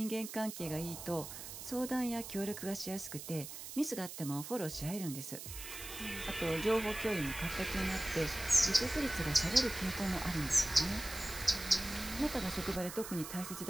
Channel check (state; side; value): noise; right; hiss, 10 dB below the sound